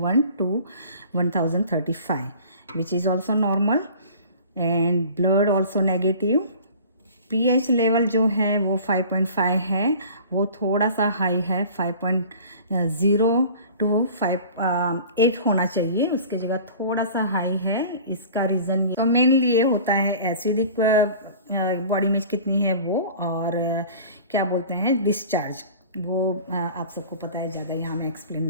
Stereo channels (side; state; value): both; inverted; correlation -0.43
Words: to 1035, which is also normal. And blood also negative, pH level जो है वो 5.5 है, वो थोड़ा सा हाई है, 5.0 टू 8 होना चाहिए, उसकी जगह थोड़ा सा हाई है। इसका रीज़न ये तो मेनली ये होता है एसिडिक बॉडी में कितनी है वो, और क्या बोलते हैं डिस्चार्ज, वो आप सबको पता है, ज़्यादा यहाँ मैं एक्सप्लेन